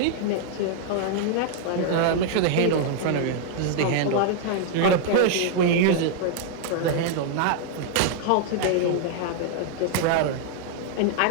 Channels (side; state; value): both; different; correlation -0.01